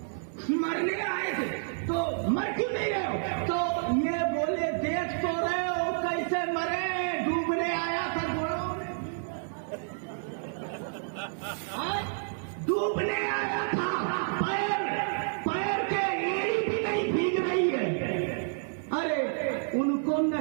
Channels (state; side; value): silent; left; digital silence